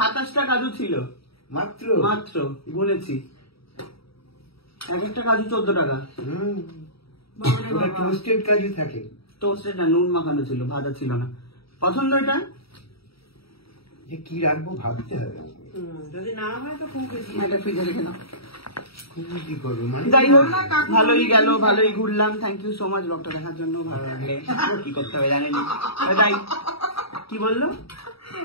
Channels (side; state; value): right; late; 0.76 ms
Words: কাজু ছিল মাত্র মাত্র, গুনেছি, এক একটা কাজু 14 টাকা। ওটা টোস্টেড কাজু থাকে, টোস্টেড না, নুন মাখানো ছিল, ভাজা ছিল না। পছন্দ এটা? যে কি রাখবো ভাবতে হবে, যদি না হয় তো খুব এটা ফ্রিজে রেখে দাও। কি করবো মানে। যাই হোক ভালোই গেল, ভালোই ঘুরলাম। থ্যাংক ইউ সো মাচ ব্লগটা দেখার জন্য। ভালো লাগলে কি করতে হবে জানেনি। যাই, কি বললো,